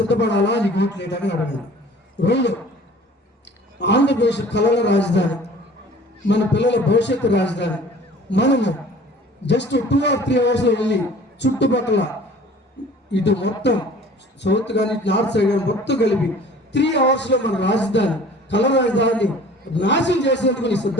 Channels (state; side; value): normal; both; correlation 0.48